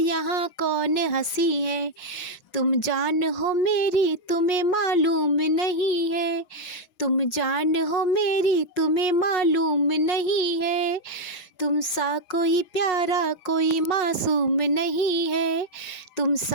कौन हंसी है। तुम जान हो मेरी तुम्हें मालूम नहीं है, तुम जान हो मेरी तुम्हें मालूम नहीं है। तुम सा कोई प्यारा कोई मासूम नहीं है, तुम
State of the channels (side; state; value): right; late; 5.0 ms